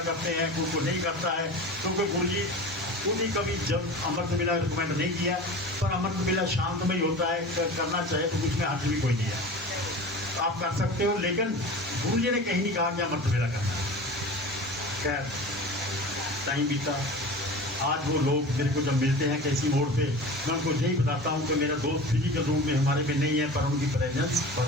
करते हैं, कुछ को नहीं करता है, क्योंकि गुरु जी खुद ही कभी जब अमृत मेला रिकमेंड नहीं किया, पर अमृत मेला शांतमय होता है, करना चाहे तो उसमें हाथ भी कोई नहीं है, आप कर सकते हो, लेकिन गुरु जी ने कहीं नहीं कहा कि अमृत मेला करना है। खैर टाइम बीता, आज वो लोग मेरे को जब मिलते हैं किसी मोड़ पे, मैं उनको यही बताता हूँ कि मेरा दोस्त फिजिकल रूप में हमारे में नहीं है, पर उनकी प्रेजेंस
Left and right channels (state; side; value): normal; both; correlation 0.34